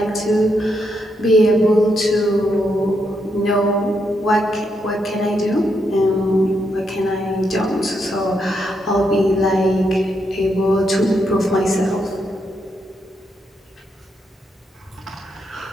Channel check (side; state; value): both; normal; correlation 0.80